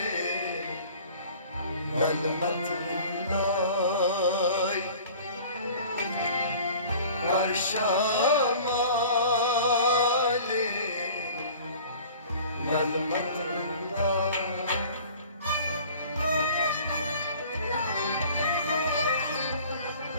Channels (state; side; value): inverted; both; correlation -0.46